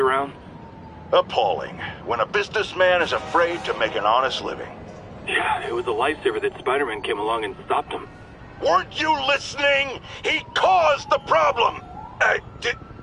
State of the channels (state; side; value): identical; both; correlation 1.00